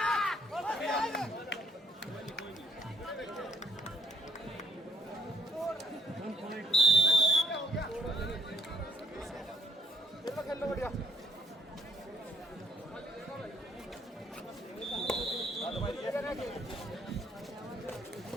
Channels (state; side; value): normal; both; correlation 0.69